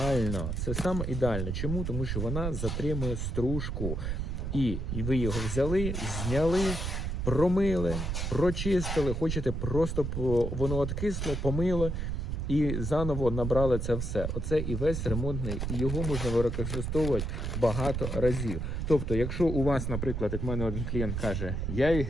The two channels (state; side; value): noise; right; rumble, 2 dB below the sound